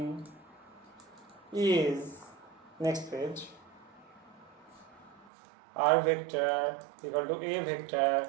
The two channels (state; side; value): drops out; left; at 5.2 s